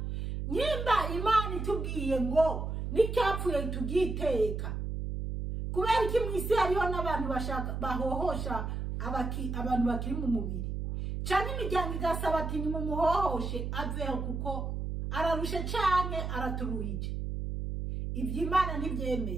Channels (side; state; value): right; noise; hum, 3 dB below the sound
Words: Nyimba Imana itubwiye ngo nicyapfuye tugiteka. Kubera iki mwisi hariho n'abantu bahohosha abantu bakiri mu mubiri. Cyane imiryango igasaba ati nimumuhohoshe aveho kuko ararushe cyane araturuhije. Ibyo Imana